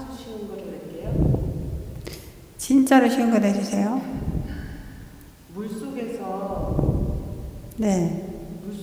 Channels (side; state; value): both; identical; correlation 1.00